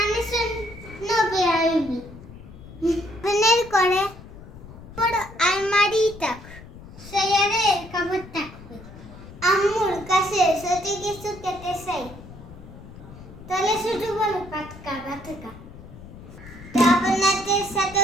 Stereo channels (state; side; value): noise; left; rumble, 17 dB below the sound